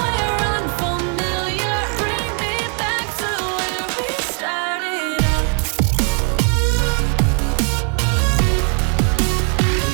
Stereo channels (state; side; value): quieter; left; 39.2 dB